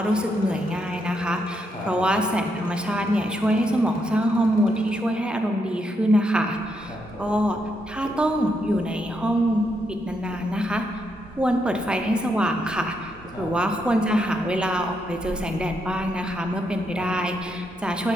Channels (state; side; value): normal; both; correlation 0.79